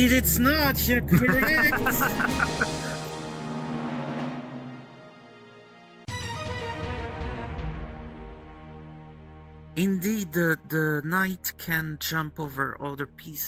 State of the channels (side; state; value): both; identical; correlation 1.00